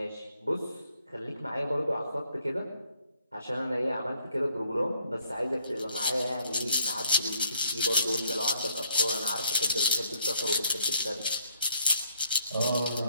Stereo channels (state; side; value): inverted; both; correlation -0.65